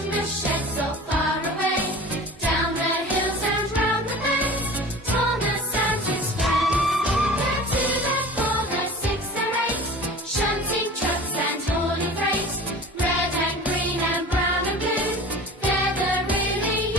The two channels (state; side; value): normal; both; correlation 0.38